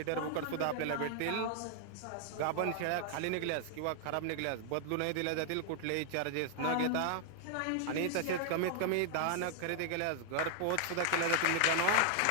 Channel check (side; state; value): both; different; correlation 0.00